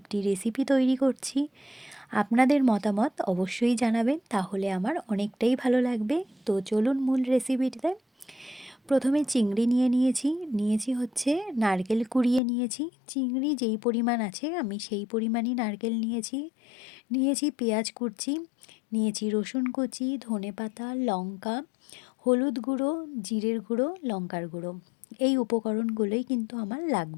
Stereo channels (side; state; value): right; drops out; at 12.4 s